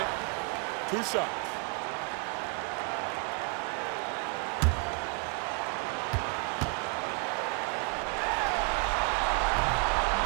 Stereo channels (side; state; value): left; quieter; 36.7 dB